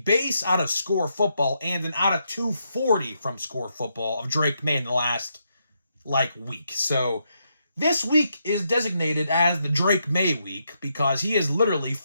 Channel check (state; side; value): inverted; both; correlation -0.80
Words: out of Score Football, and an out of 240 from Score Football of Drake May in the last, week. So this week is designated as the Drake May week because he has literally